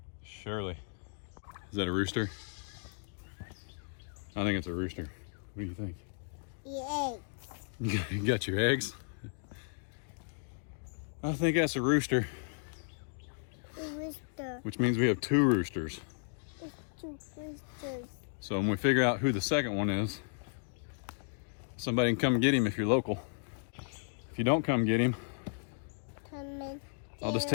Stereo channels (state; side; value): silent; right; digital silence